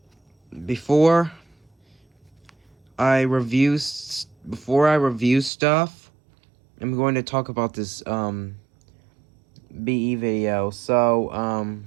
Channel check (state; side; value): drops out; left; at 5.5 s